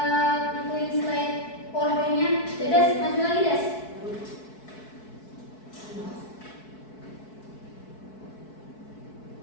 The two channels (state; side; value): late; right; 4.6 ms